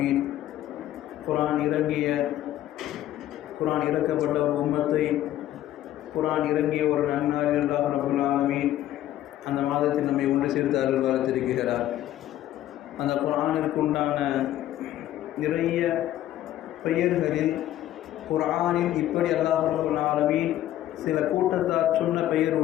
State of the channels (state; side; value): quieter; right; 13.1 dB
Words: குர்ஆன் இறக்கப்பட்ட ஒரு உம்மத்தை, குர்ஆன் இறங்கிய ஒரு நன்னாளில் அல்லாஹ் ரப்பல் ஆலமீன் அந்த மாதத்தில் நம்மை ஒன்று சேர்த்து அருள் வளர்த்திருக்கிறார். அந்த குர்ஆனிற்கு உண்டான நிறைய பெயர்களில் குர்ஆனில் இப்படி அல்லாஹ் ரப்பல் ஆலமீன் சில கூட்டத்தார் சொன்ன பெயர்